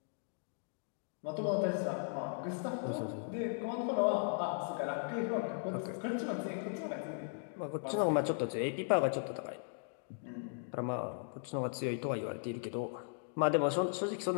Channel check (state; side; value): silent; right; digital silence